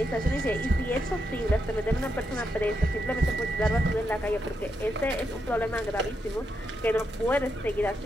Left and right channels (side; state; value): both; normal; correlation 0.83